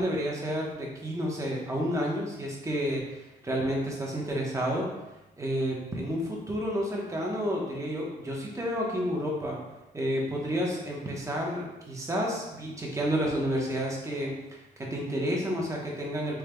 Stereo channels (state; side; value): normal; both; correlation 0.68